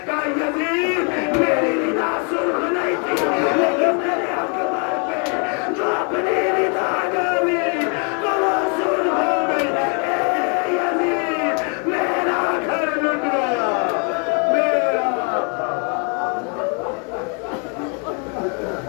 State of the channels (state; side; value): quieter; right; 37.9 dB